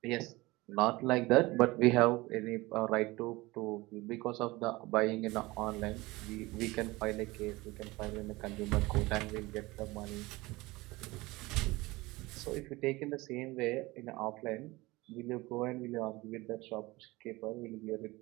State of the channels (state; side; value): quieter; left; 21.2 dB